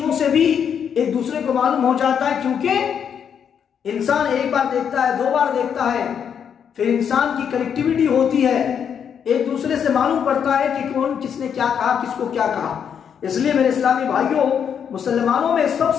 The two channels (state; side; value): quieter; right; 7.8 dB